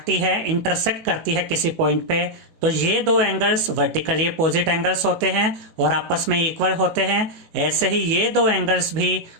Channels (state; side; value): late; left; 19 ms